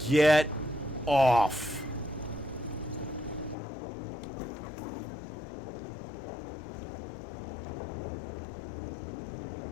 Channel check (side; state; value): right; drops out; at 3.6 s